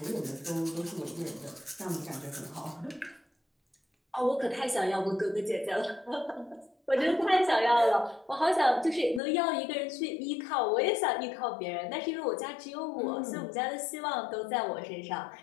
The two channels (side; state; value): right; drops out; at 9.2 s